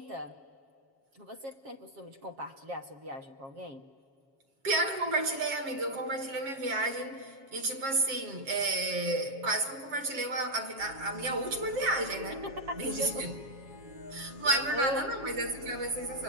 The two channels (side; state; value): left; late; 7.3 ms